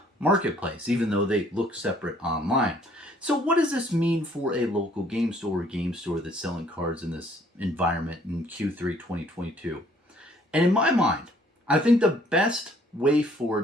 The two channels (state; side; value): normal; both; correlation 0.61